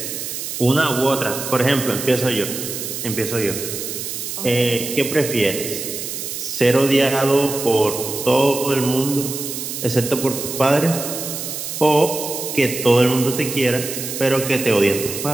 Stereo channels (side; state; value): right; noise; hiss, 6 dB below the sound